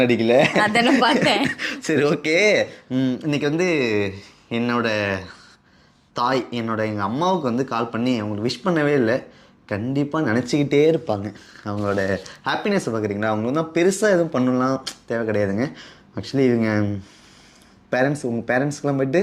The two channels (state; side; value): identical; both; correlation 1.00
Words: அடிக்கல. அதெல்லாம் பார்த்தேன். சரி, ஓகே. இன்னைக்கு வந்து என்னோட தாய், எங்கள் அம்மாவுக்கு வந்து கால் பண்ணி அவங்களுக்கு விஷ் பண்ணவே இல்லை. கண்டிப்பாக நினச்சிக்கிட்டே இருப்பாங்க அவங்களோட ஹாப்பினஸை. பார்க்குறீங்களா, அவங்க வந்து பெருசாக எதுவும் பண்ணலாம் தேவை கிடையாதுங்க. ஆக்சுவலி இவங்க பேரண்ட்ஸ், உங்கள் பேரண்ட்ஸ்க்கெலாம் போய்ட்டு